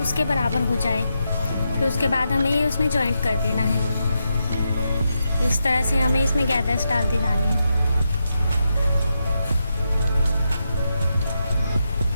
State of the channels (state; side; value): inverted; both; correlation -0.85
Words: उसके बराबर हो जाए। फिर उसके बाद हमें ये उसमें जॉइंट कर देना है। इस तरह से हमें इसमें गैदर्स डालते जाने हैं।